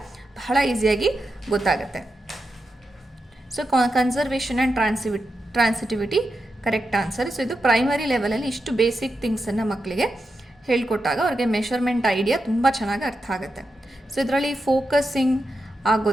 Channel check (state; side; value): normal; both; correlation 0.88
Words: ಬಹಳ ಈಸಿಯಾಗಿ ಗೊತ್ತಾಗುತ್ತೆ. So conservation and transitivity correct answer. So ಇದು ಪ್ರೈಮರಿ ಲೆವೆಲಲ್ಲಿ ಇಷ್ಟು ಬೇಸಿಕ್ ಥಿಂಗ್ಸನ್ನು ಮಕ್ಕಳಿಗೆ ಹೇಳ್ಕೊಟ್ಟಾಗ ಅವ್ರಿಗೆ ಮೆಷರ್ಮೆಂಟ್ ಐಡಿಯಾ ತುಂಬ ಚೆನ್ನಾಗಿ ಅರ್ಥ ಆಗುತ್ತೆ. ಸೊ ಇದರಲ್ಲಿ ಫೋಕಸಿಂಗ್